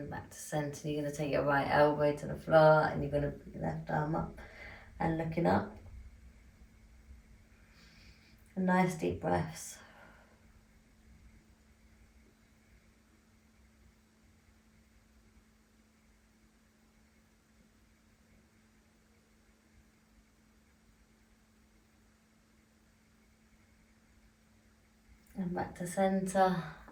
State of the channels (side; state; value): both; identical; correlation 1.00